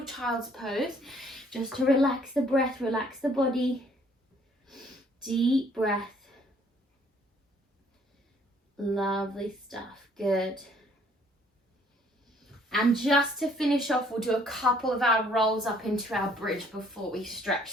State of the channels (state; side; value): normal; both; correlation 0.62